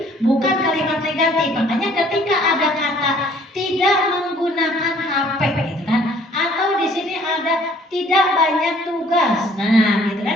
bukan kalimat negatif. Makanya ketika ada kata tidak menggunakan HP gitu kan, atau di sini ada tidak banyak tugas, nah gitu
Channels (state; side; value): normal; both; correlation 0.58